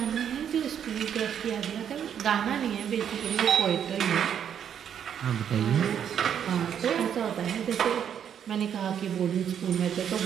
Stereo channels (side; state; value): left; quieter; 8.7 dB